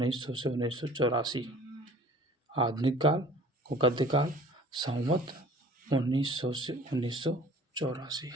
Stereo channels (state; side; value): normal; both; correlation 0.48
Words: से 1984। आधुनिक काल को गद्यकाल संवत 1900 से 1984।